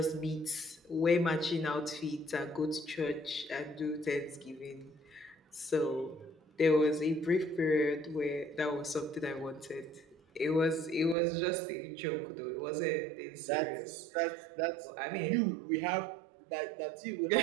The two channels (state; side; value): drops out; left; at 11.2 s